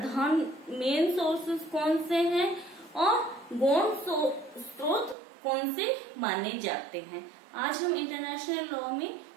मेन सोर्सेस कौन से हैं और गौण स्रोत कौन से माने जाते हैं। आज हम इंटरनेशनल लॉ में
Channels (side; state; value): left; drops out; at 5.2 s